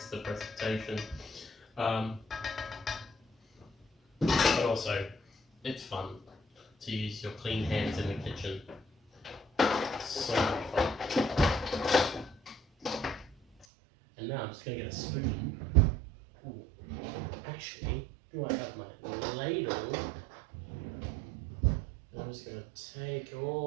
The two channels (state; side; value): drops out; left; at 13.7 s